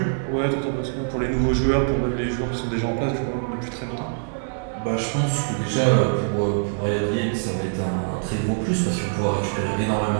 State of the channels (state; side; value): silent; left; digital silence